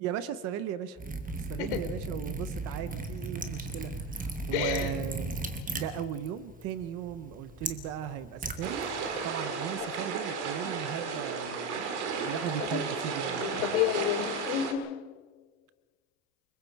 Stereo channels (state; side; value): normal; both; correlation 0.16